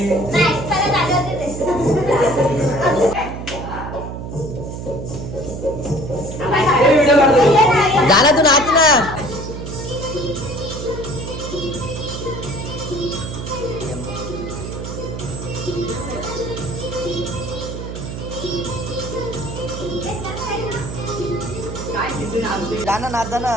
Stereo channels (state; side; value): noise; right; hum, 7 dB below the sound